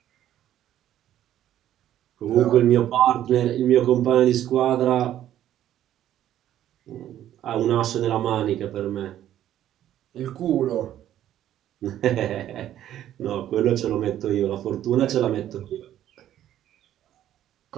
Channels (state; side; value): quieter; left; 11.9 dB